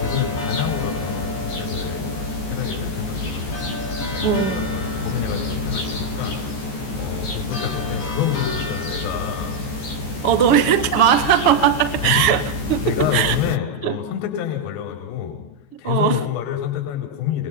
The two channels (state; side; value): late; right; 14 ms